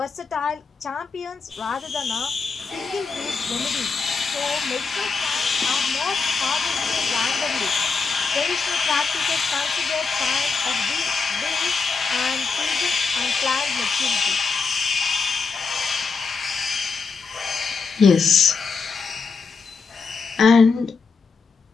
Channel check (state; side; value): quieter; right; 4.9 dB